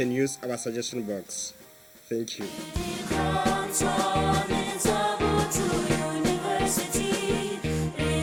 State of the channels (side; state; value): both; identical; correlation 1.00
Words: use our suggestion box. Thank you. Botho University,